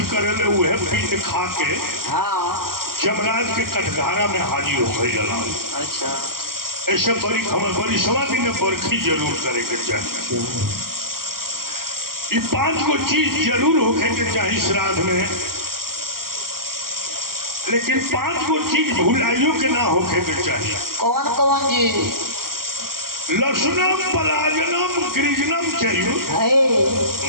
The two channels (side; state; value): left; late; 0.92 ms